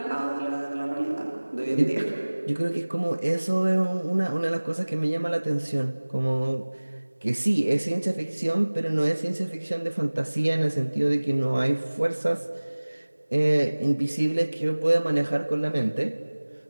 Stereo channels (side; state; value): both; inverted; correlation -1.00